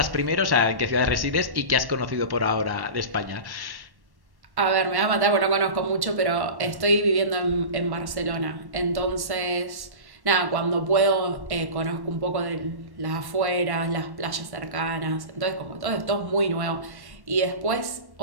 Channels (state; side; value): late; left; 1.1 ms